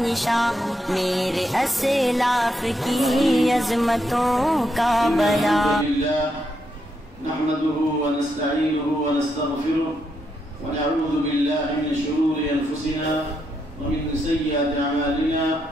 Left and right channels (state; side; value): normal; both; correlation 0.80